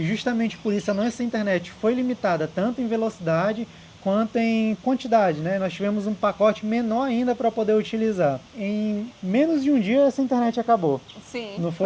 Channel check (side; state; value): both; identical; correlation 1.00